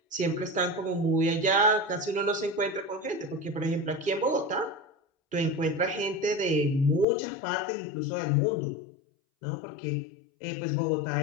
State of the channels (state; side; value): drops out; right; at 7.1 s